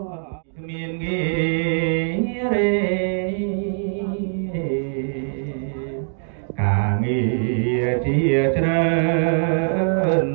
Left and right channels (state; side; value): silent; left; digital silence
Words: ការងារជាច្រើន